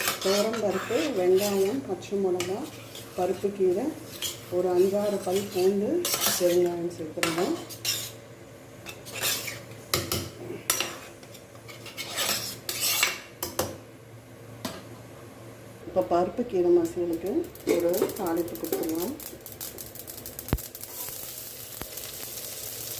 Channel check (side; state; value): both; identical; correlation 1.00